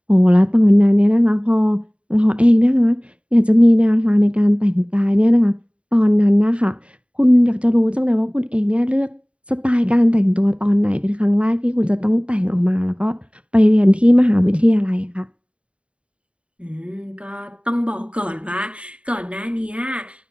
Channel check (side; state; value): left; late; 0.060 ms